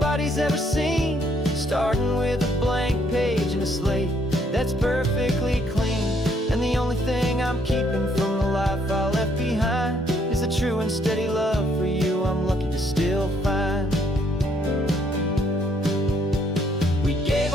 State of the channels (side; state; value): both; normal; correlation 0.69